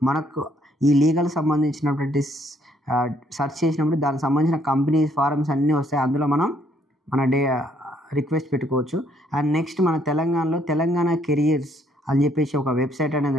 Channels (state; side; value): normal; both; correlation 0.68